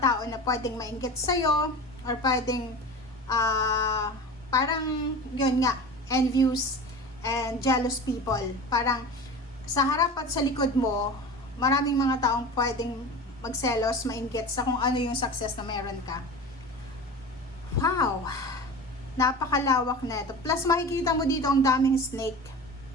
na pwedeng mainggit sa'yo, or pwedeng parang yun nga, envious and jealous people. Parang sa harap at sa likod mo, maraming mga taong pwedeng magselos, mainggit sa kung ano yung success na meron ka. Wow! Napakalawak na ito. Plus, makikita mo dito ang daming snake.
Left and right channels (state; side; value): normal; both; correlation 0.33